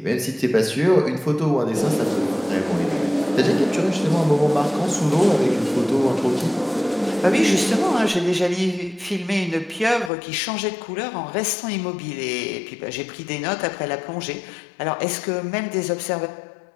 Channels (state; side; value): drops out; right; at 10.1 s